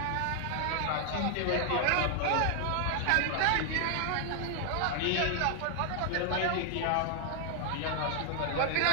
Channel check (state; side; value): different; both; correlation 0.00